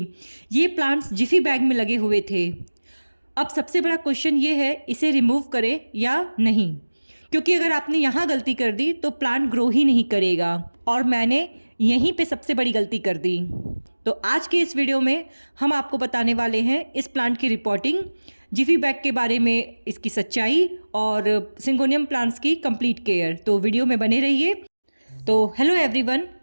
ये प्लांट्स जिफी बैग में लगे हुए थे। अब सबसे बड़ा क्वेश्चन ये है, इसे रिमूव करें या नहीं, क्योंकि अगर आपने यहाँ गलती कर दी तो प्लांट ग्रो ही नहीं करेगा और मैंने यहीं पे सबसे बड़ी गलती कर दी। तो आज के इस वीडियो में हम आपको बताने वाले हैं इस प्लांट की रिपोर्टिंग, जिफी बैग के बारे में इसकी सच्चाई और सिंगोनियम प्लांट्स की कंप्लीट केयर। तो वीडियो में बने रहिए। तो hello everyone,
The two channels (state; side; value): inverted; both; correlation -1.00